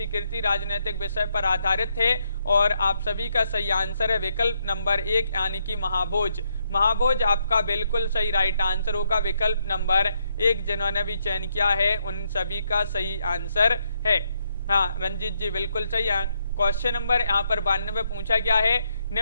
कृति राजनीतिक विषय पर आधारित है? और आप सभी का सही आंसर है विकल्प नंबर 1, यानी कि महाभोज। महाभोज आपका बिल्कुल सही राइट आंसर होगा, विकल्प नंबर 1 जिन्होंने भी चयन किया है उन सभी का सही आंसर है। हाँ रंजीत जी बिल्कुल सही। क्वेश्चन नंबर यहाँ पर 92 पूछा गया है,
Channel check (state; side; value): inverted; both; correlation -0.77